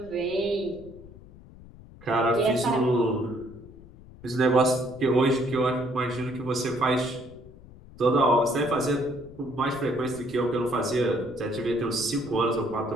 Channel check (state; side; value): noise; left; rumble, 20 dB below the sound